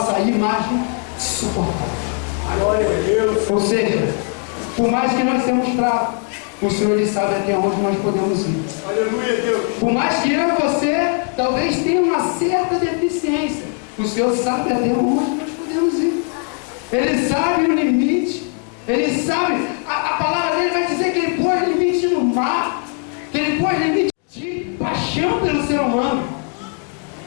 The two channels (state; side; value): quieter; right; 39.7 dB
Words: imagem suportar. Glória a Deus. Ou seja, por mais que nós sejamos fracos, o Senhor ele sabe até onde nós podemos ir. Aleluia, Deus. Por mais que eu e você talvez tenha uma certa deficiência, o Senhor sabe até onde nós podemos ir. Ele sabe o limite. Ele sabe, a palavra dele vai dizer que ele pôs limite no mar, que ele pôs limite de paixão pelo ser humano,